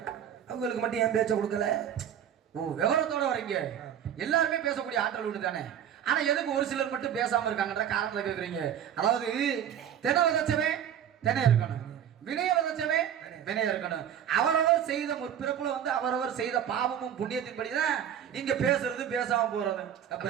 அவங்களுக்கு மட்டும் ஏன் பேச்ச கொடுக்கல? ஓ, விவரத்தோட வரீங்க. எல்லாருமே பேசக்கூடிய ஆற்றல் உண்டு தானே. ஆனா எதுக்கு ஒரு சிலர் மட்டும் பேசாம இருக்காங்கன்ற காரணத்தை கேக்குறீங்க. அதாவது தென விதைச்சவே தென இருக்கணும், வினய விதைச்சவே வினய இருக்கணும். அவரவர் செய்த முற்பிறப்புல வந்து அவரவர் செய்த பாவமும் புண்ணியத்தின்படிதான் இங்க பேசுறது பேசாம போறது. அப்ப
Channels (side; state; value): left; quieter; 9.5 dB